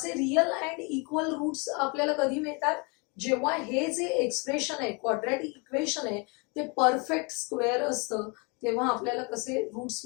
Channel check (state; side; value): quieter; right; 31.3 dB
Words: रियल अँड इक्वल रूट्स आपल्याला कधी मिळतात, जेव्हा हे जे एक्सप्रेशन आहे क्वाड्रॅटिक इक्वेशन आहे ते परफेक्ट स्क्वेअर असतं, तेव्हा आपल्याला कसे रूट्स